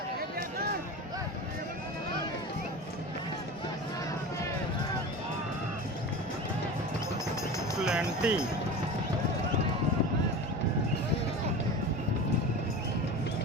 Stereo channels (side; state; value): both; normal; correlation 0.31